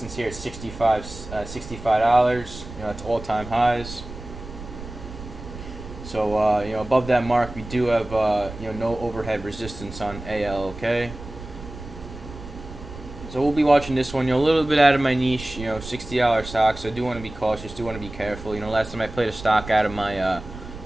here at $65. It's all-time highs. So above that mark, we do have no overhead resistance on ALK. So we'll be watching this one. A little bit out of my niche. $60 stock. So I do want to be cautious. Do want to be careful. Last time I played a stock out of my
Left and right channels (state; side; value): noise; right; rumble, 13 dB below the sound